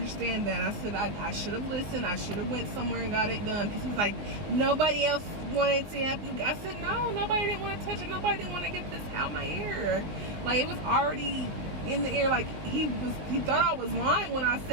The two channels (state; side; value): late; left; 20 ms